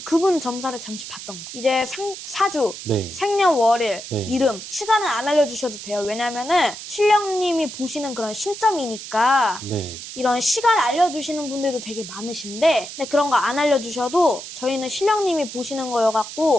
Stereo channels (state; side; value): noise; right; hiss, 11 dB below the sound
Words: 그분 점사를 잠시 봤던 거. 이제 사주, 네. 생년월일, 네. 이름, 시간은 안 알려주셔도 돼요. 왜냐면은 신령님이 보시는 그런 신점이니까 네. 이런 시간 알려주시는 분들도 되게 많으신데 근데 그런 거 안 알려주셔도 저희는 신령님이 보시는